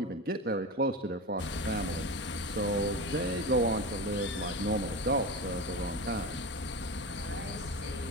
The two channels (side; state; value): both; normal; correlation 0.24